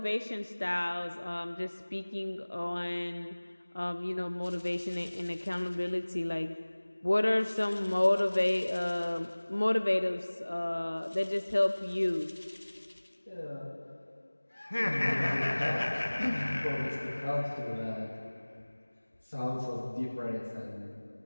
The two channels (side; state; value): both; inverted; correlation -1.00